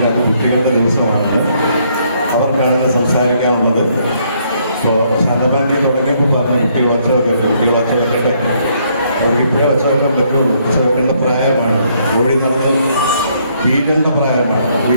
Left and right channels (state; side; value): inverted; both; correlation -0.70